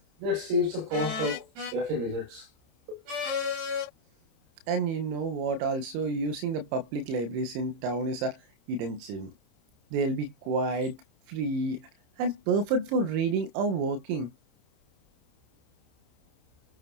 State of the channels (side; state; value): left; late; 26 ms